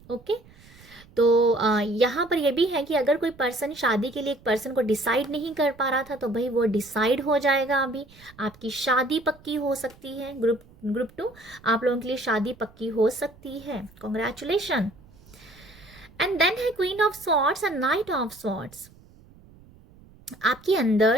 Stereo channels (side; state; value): right; noise; rumble, 25 dB below the sound